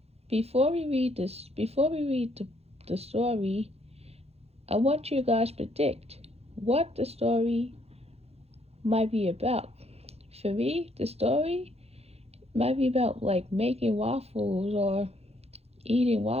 before we read the story, I want you guys to predict what the story might be about. For me, the story might be about like making waffles or eating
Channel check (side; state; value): left; late; 0.30 ms